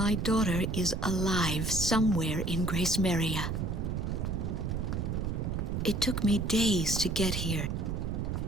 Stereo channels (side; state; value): right; noise; rumble, 1 dB below the sound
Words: daughter is alive somewhere in Grace Maria. It took me days to get here.